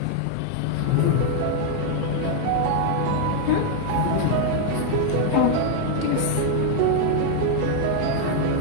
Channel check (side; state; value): both; different; correlation 0.00